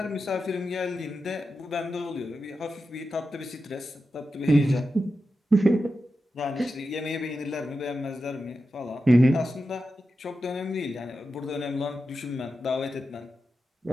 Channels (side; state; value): both; normal; correlation 0.90